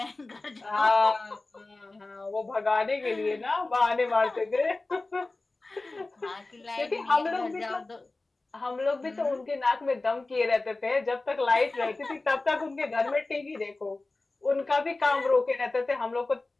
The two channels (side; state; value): right; quieter; 3.2 dB